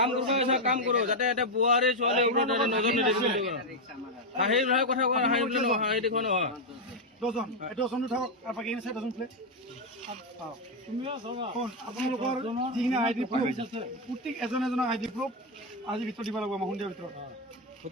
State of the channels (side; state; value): both; normal; correlation 0.03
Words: কাম কৰো যাতে এটা বোৱাৰী ছোৱালী ওপৰত নজৰ নিদিবি হাঁহি কথা কোৱা হাঁহি বুলি নহয় হাঁহি দেখুৱা নহয় দহজন দহজনো থাকক আৰু বাকী চাই দহজন প্লেট আপোনালোকৰ যিখিনি আই ডি প্ৰুফ প্ৰত্যেক এজন এজনৰ আই ডি প্ৰুফ আজি ভিতৰত দিব লাগিব আমাৰ সন্ধিয়াৰ ভিতৰত